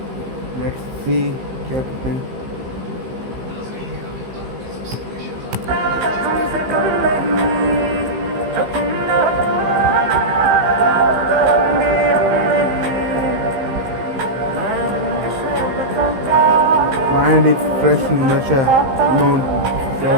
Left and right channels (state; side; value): late; left; 15 ms